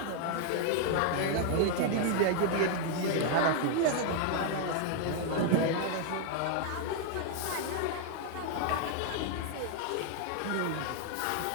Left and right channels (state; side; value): different; both; correlation 0.00